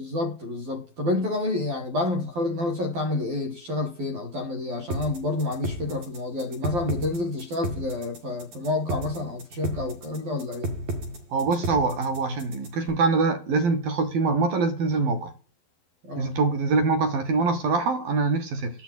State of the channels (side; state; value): left; late; 12 ms